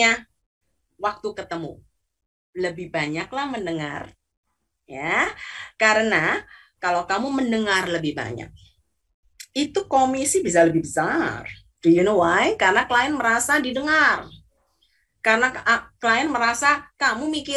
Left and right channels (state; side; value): identical; both; correlation 1.00